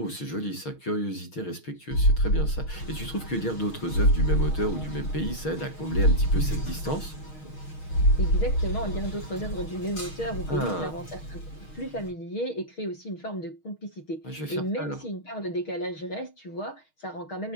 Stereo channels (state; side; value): late; right; 6.4 ms